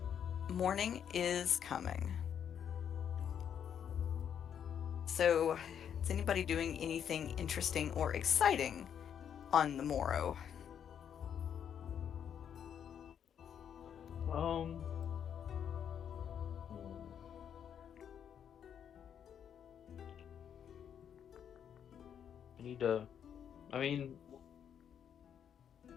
morning is coming. So, is anybody doing anything interesting or exciting on the morrow? Um, hmm, I need to. I mean,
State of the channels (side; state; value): right; quieter; 8.6 dB